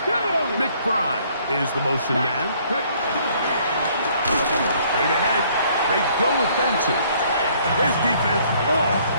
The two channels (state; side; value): inverted; both; correlation -0.62